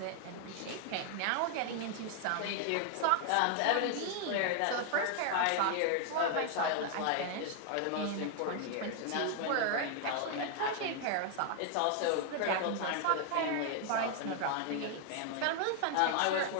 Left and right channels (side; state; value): both; different; correlation 0.00